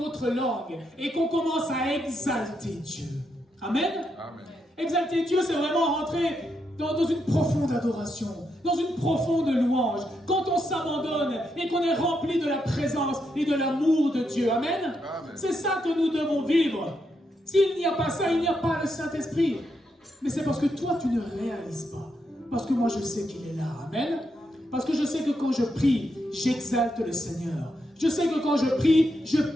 langues et qu'on commence à exalter Dieu. Amen. Amen. Exalter Dieu, c'est vraiment rentrer dans une profonde adoration, dans une profonde louange. Quand on s'abandonne et qu'on est rempli de la présence et de l'amour de Dieu. Amen. Amen. C'est ça que nous devons vivre. S'il n'y a pas ça, il n'y a pas le Saint-Esprit. Mais c'est parce que toi, tu ne réalises pas. Parce que moi, je sais qu'il est là. Amen. Parce que je sais que quand je prie, j'exalte le Seigneur. Je sais que quand je prie, je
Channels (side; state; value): both; normal; correlation 0.81